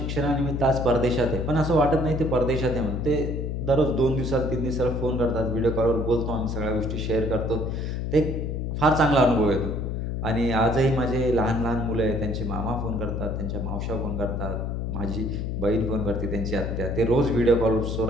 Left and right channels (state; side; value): noise; left; hum, 2 dB below the sound